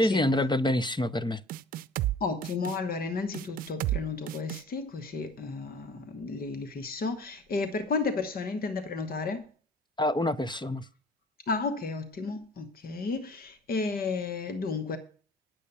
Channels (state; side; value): normal; both; correlation 0.47